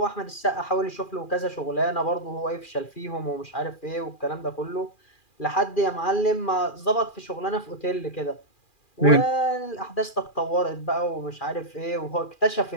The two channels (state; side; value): late; right; 2.4 ms